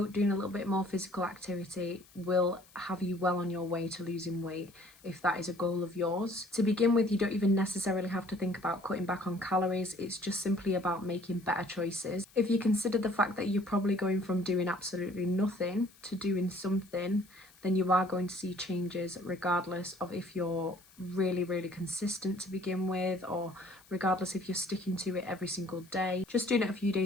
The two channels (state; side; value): noise; left; hiss, 26 dB below the sound